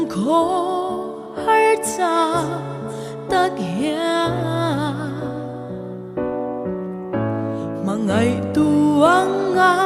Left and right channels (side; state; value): both; identical; correlation 1.00